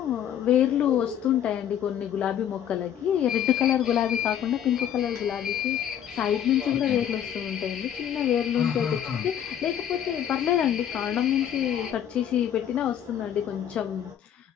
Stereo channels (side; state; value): right; quieter; 9.8 dB